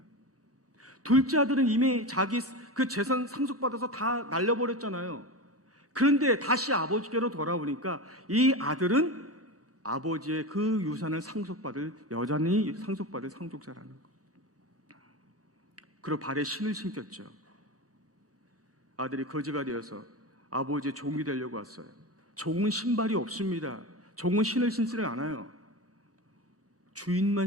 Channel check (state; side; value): normal; both; correlation 0.23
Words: 둘째 아들은 이미 자기 그 재산 상속받아서 다 날려버렸잖아요. 그런데 다시 아버지께로 돌아오니까 이 아들은 아버지의 그 유산을 여전히 상속받을 상속자라는 거. 그리고 발에 신을 신겼죠. 아들이 거지가 되어서 아버지의 종이 되려고 왔어요. 종은 신발이 없습니다. 종은 신을 신지를 않아요. 주인만